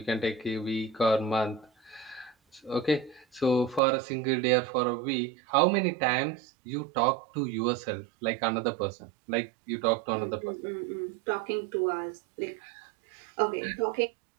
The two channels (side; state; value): left; drops out; at 3.8 s